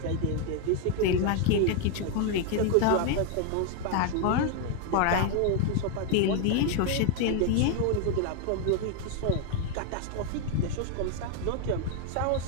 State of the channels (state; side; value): different; both; correlation 0.00